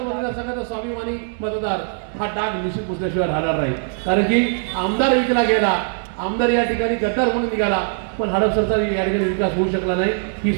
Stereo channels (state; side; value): silent; left; 65 dB below the other